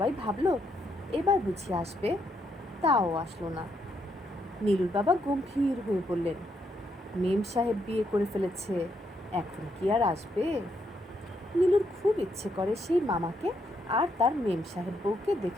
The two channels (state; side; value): normal; both; correlation 0.77